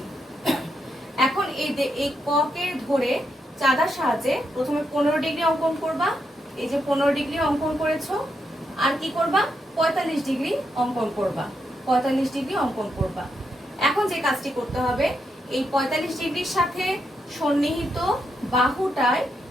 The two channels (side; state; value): both; normal; correlation 0.81